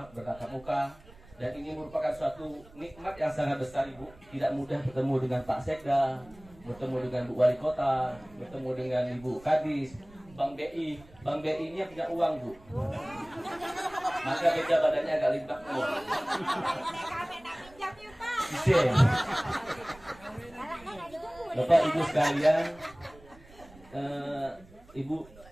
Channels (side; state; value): right; noise; rumble, 23 dB below the sound